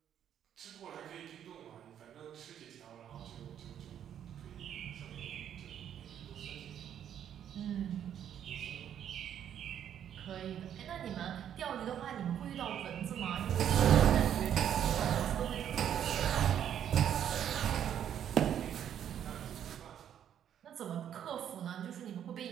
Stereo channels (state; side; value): quieter; left; 9.7 dB